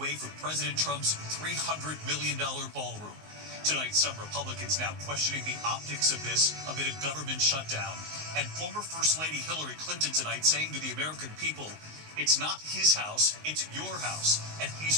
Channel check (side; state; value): left; late; 19 ms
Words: for President Trump's $300 million ballroom. Tonight, some Republicans now questioning the optics of this amid a government shutdown. And former First Lady Hillary Clinton tonight saying to the American people, it's not his house, it's your house, and he's